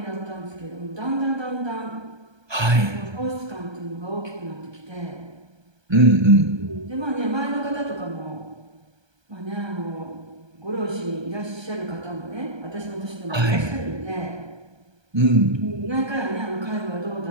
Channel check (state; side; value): late; left; 1.3 ms